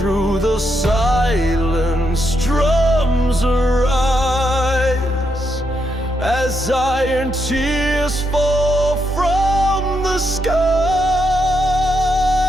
the silence drums arise, as iron tears fall from the skies.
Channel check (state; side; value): normal; both; correlation 0.80